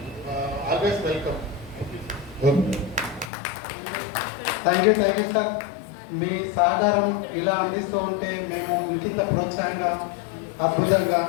always welcome. Thank you sir. మీ సహకారం ఇలా అందిస్తూ ఉంటే మేము ఇంకింత ప్రోత్సాహంగా అద్భుతంగా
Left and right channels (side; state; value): right; drops out; at 3.3 s